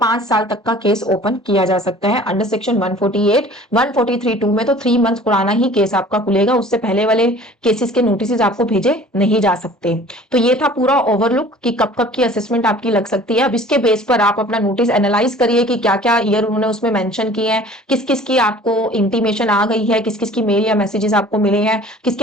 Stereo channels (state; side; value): normal; both; correlation 0.47